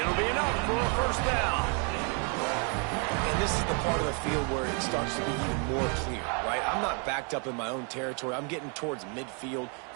be enough for a first down. And this is the part of the field where it starts to be even more clear, right? I'm not backed up in my own territory. I'm getting towards midfield.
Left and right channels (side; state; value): left; quieter; 37.9 dB